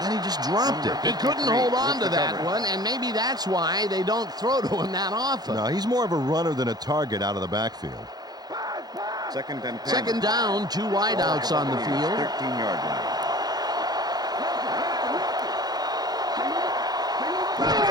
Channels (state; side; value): late; left; 0.19 ms